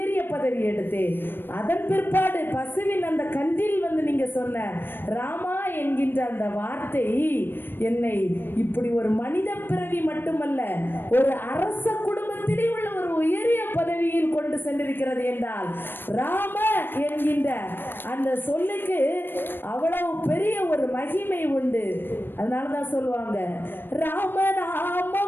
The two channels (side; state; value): right; late; 0.098 ms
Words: பதவி எடுத்தேன். அதன் பிற்பாடு பசுவின் அந்த கன்றில் நீங்க சொன்ன ராமா என்கின்ற அந்த வார்த்தை என்னை இப்படி ஒரு மனித பிறவி மட்டுமல்ல ஒரு அரச குடும்பத்திலே உள்ள ஒரு உயரிய பதவியில் கொண்டு சென்றிருக்கிறது என்றால் ராம என்கின்ற அந்த சொல்லுக்கு அவ்வளவு பெரிய ஒரு மகிமை உண்டு. அதனாலதான் சொல்லுவாங்க